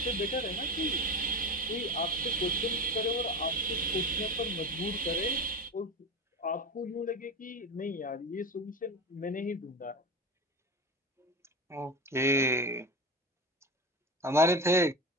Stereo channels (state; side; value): normal; both; correlation 0.26